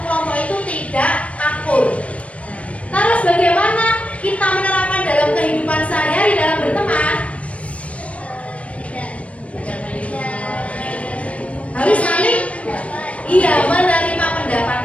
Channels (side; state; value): right; late; 0.064 ms